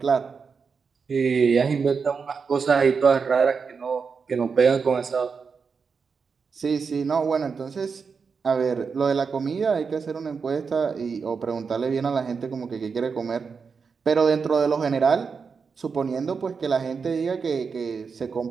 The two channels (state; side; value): quieter; left; 5.5 dB